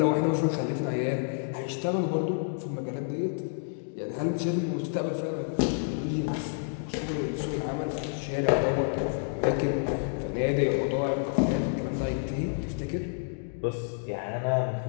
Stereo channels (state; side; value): silent; right; digital silence